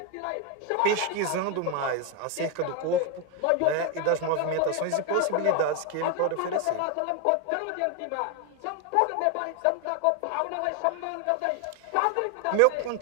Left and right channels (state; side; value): different; both; correlation 0.01